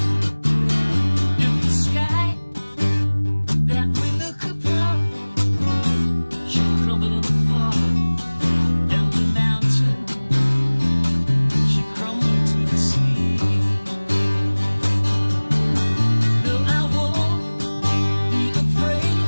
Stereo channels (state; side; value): inverted; both; correlation -1.00